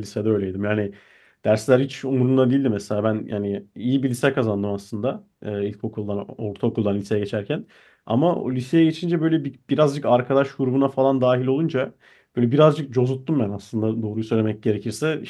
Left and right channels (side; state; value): both; identical; correlation 1.00